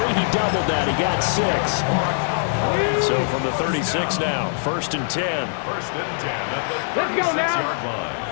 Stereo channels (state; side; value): silent; right; digital silence